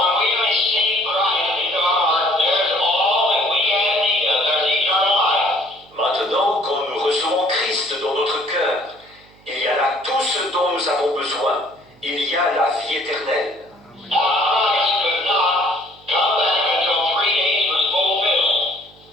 we receive Christ into our heart, there's all that we have need of. There's eternal life. Maintenant, quand nous recevons Christ dans notre cœur, il y a là tout ce dont nous avons besoin. Il y a la vie éternelle. Now, Christ could not come back until 3 days was fulfilled,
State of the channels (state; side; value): noise; right; hum, 28 dB below the sound